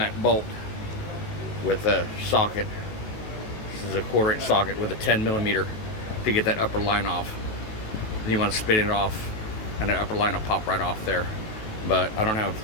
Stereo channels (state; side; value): late; right; 19 ms